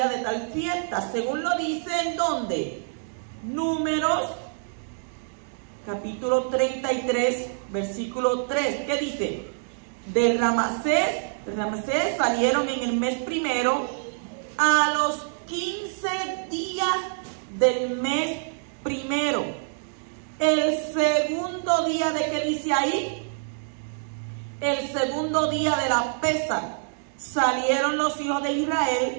de tal fiesta, según lo dice en ¿dónde? Números capítulo 33, versículo 3, ¿qué dice? De Ramsés salieron en el mes primero, a los 15 días del mes primero. El segundo día, ¿de qué dice ahí? El segundo día de la Pesaj, salieron los hijos de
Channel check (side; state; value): left; silent; digital silence